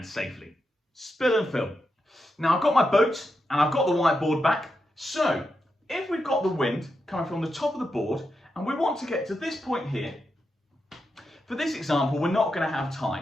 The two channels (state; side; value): normal; both; correlation 0.86